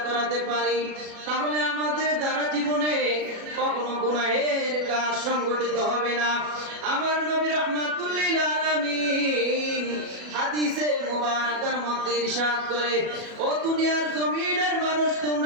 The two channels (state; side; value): late; left; 37 ms